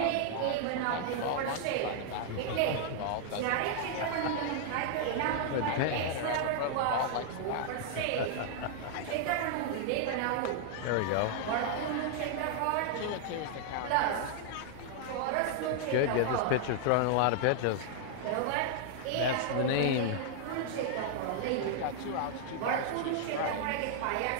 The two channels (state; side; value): different; both; correlation -0.01